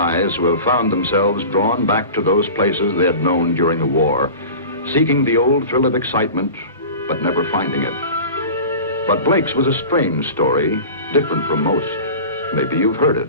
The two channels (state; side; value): inverted; both; correlation -0.36